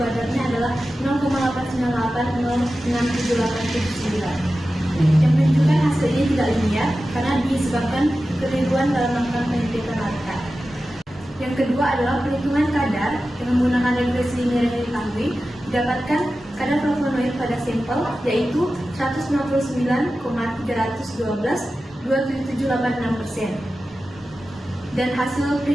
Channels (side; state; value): both; normal; correlation 0.94